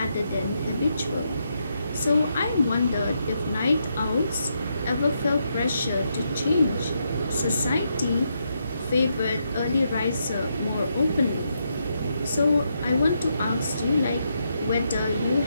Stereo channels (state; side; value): inverted; both; correlation -0.80